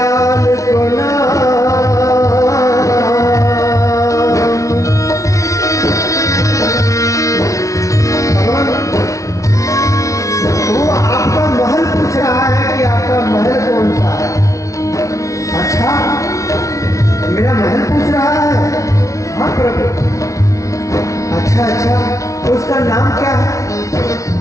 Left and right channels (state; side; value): late; right; 0.15 ms